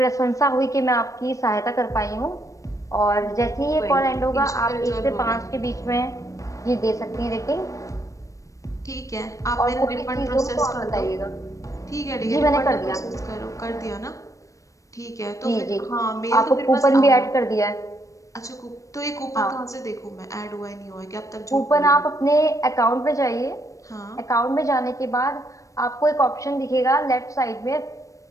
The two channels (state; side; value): late; right; 0.16 ms